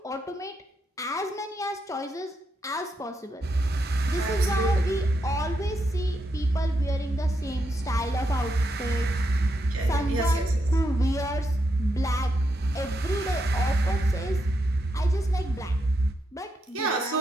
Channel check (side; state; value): both; normal; correlation 0.82